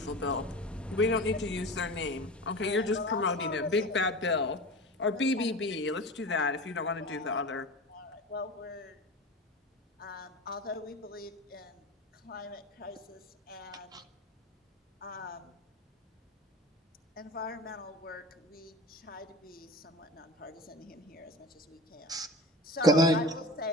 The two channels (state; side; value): normal; both; correlation 0.32